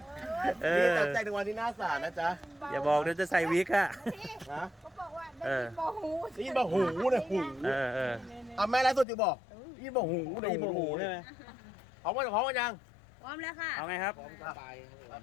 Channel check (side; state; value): right; drops out; at 9.1 s